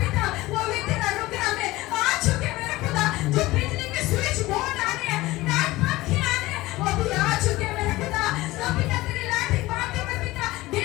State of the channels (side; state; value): right; quieter; 18.8 dB